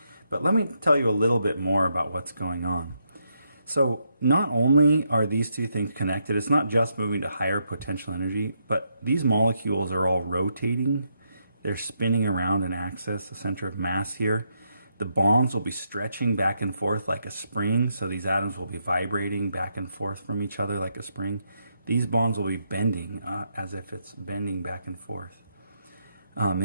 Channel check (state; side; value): inverted; both; correlation -0.79